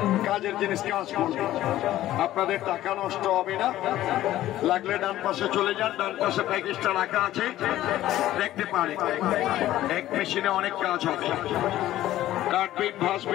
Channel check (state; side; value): quieter; right; 14.1 dB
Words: কাজের জিনিস কাজ করবে, আপনাদের টাকা নষ্ট হবে না। লাগলে ডান পাশে চলে যান, ডান পাশে প্যাকেজটা রাখা আছে, দেখতে পারে। এক মেশিনে অনেক কাজ হবে, কাটবেন,